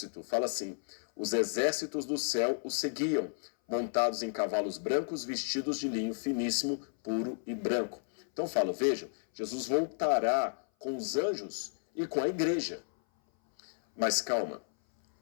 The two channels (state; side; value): silent; right; 56 dB below the other